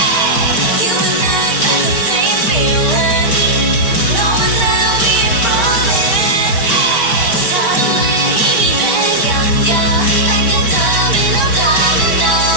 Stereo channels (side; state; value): right; late; 5.2 ms